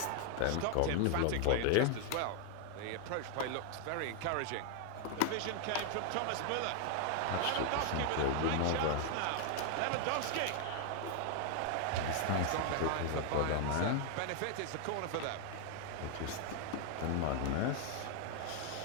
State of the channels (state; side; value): different; both; correlation 0.00